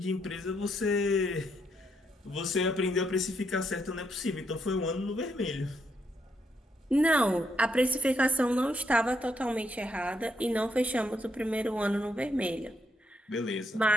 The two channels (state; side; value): normal; both; correlation 0.77